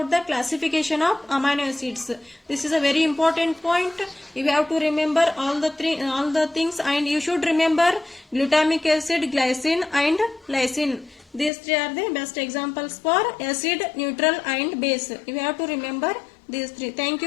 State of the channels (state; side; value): drops out; right; at 11.5 s